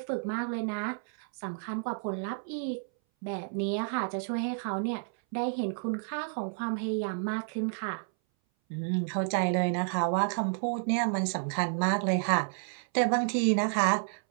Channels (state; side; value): silent; left; 57 dB below the other